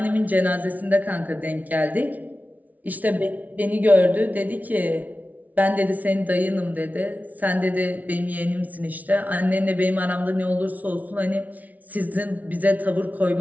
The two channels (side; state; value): left; late; 0.074 ms